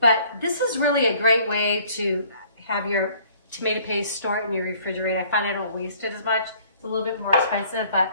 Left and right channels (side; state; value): both; inverted; correlation -0.58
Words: But this is really a great way to have your tomato paste stored in your refrigerator. I find I don't waste it as much. It's a little bit more expensive, but